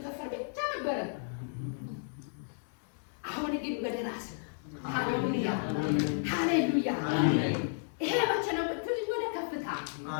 ከንፈር ብቻ ነበረ። አሁን ግን ወደ ራስ ሃሌሉያ! ሃሌሉያ! ይሄ መቼ ነው ብትል ወደ ከፍታ።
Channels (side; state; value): right; silent; 56 dB below the other